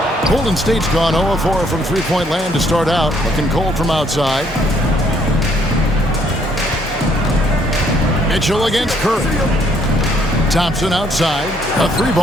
Golden State's gone 0-4 from three-point land to start out. Looking cold from outside. Mitchell against Curry. Thompson outside. A three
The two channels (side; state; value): both; normal; correlation 0.67